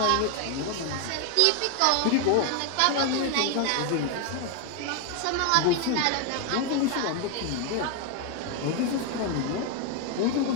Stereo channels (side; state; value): both; different; correlation 0.01